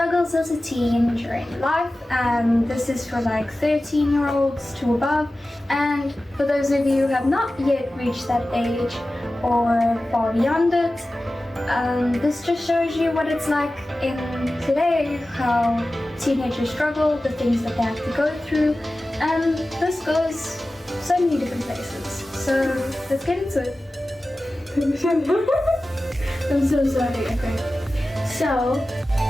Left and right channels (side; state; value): both; normal; correlation 0.95